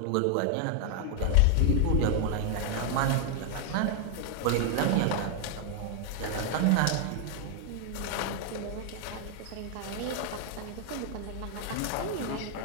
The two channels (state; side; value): different; both; correlation 0.00